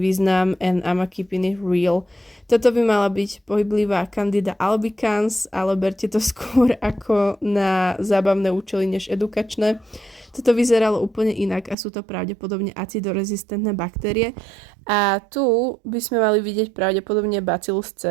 and I'm keeping it real. Toto by mala byť pohyblivá Candida albicans, ale berte to skôr ako na zábavné účely než edukačné. Toto vyzeralo úplne inak a sú to pravdepodobne acidorezistentné baktérie. A tu by sme mali vidieť pravdepodobne Bacillus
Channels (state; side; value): drops out; left; at 11.8 s